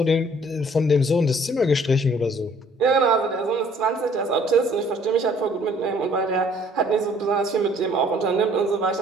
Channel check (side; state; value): both; normal; correlation 0.58